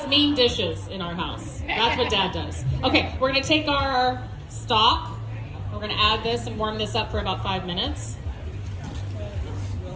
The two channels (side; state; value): both; identical; correlation 1.00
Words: mean dishes in our house. That's what Dad does. Okay, we're gonna take our stock. We're gonna add this and warm this up for about 5 minutes.